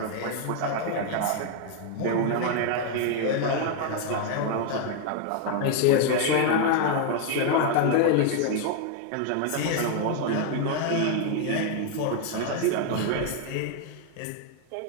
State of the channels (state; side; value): different; both; correlation 0.00